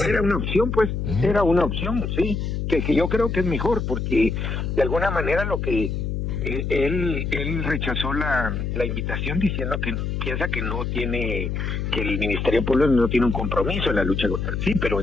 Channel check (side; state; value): left; noise; hum, 2 dB below the sound